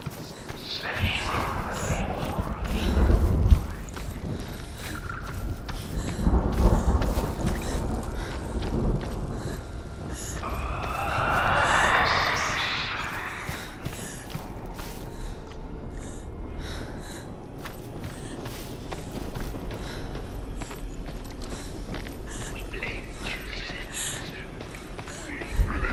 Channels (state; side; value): identical; both; correlation 1.00